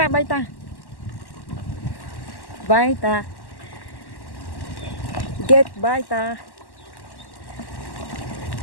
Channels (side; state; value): right; late; 1.1 ms